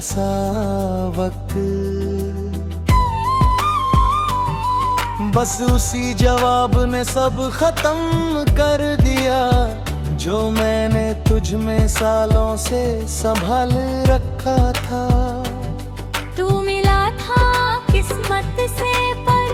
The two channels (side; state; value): both; identical; correlation 1.00